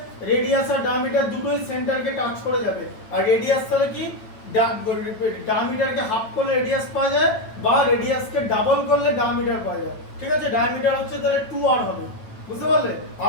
রেডিয়াস আর ডায়ামিটার দুটোই সেন্টারকে টাচ করে যাবে। আর রেডিয়াস তাহলে কি? ডায়ামিটারকে হাফ করলে রেডিয়াস পাওয়া যায়, বা রেডিয়াসকে ডাবল করলে ডায়ামিটার পাওয়া যায়, ঠিক আছে? ডায়ামিটার হচ্ছে তাহলে 2r হবে, বুঝতে পারলে?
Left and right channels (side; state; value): right; late; 9.1 ms